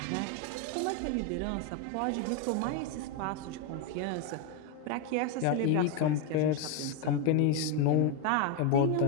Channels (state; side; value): different; both; correlation 0.02